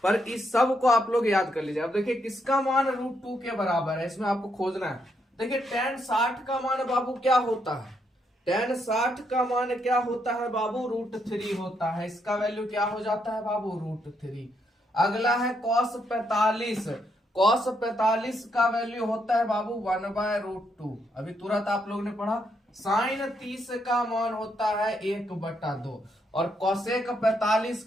पर इस सब को आप लोग याद कर लीजिए। अब देखिए किसका मान √2 के बराबर है, इसमें आपको खोजना है। देखिए tan 60 का मान बाबू क्या होता है, tan 60 का मान क्या होता है बाबू, √3 होता है। इसका वैल्यू क्या हो जाता है बाबू, √3। अगला है cos 45, cos 45 का वैल्यू होता है बाबू 1/√2, अभी तुरंत आप लोग ने पढ़ा। sin 30 का मान होता है 1/2, और cosec 45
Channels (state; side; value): normal; both; correlation 0.77